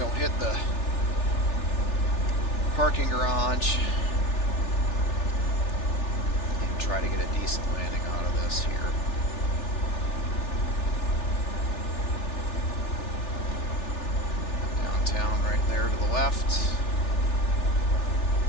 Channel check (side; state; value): right; late; 3.4 ms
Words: hit the parking garage and try to get a decent landing out of this here. Downtown right there to the left.